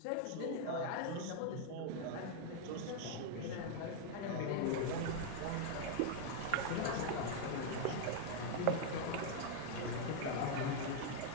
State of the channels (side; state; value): both; different; correlation 0.00